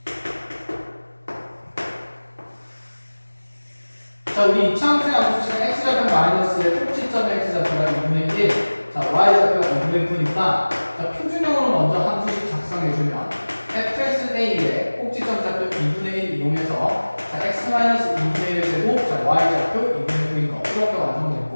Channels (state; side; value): inverted; both; correlation -1.00